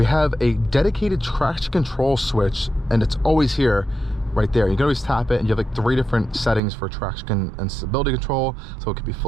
have a dedicated traction control switch, and it's always here. Right there, you can always tap it, and you have like 3 different settings for traction and stability control. So it could be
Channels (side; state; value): left; drops out; at 6.6 s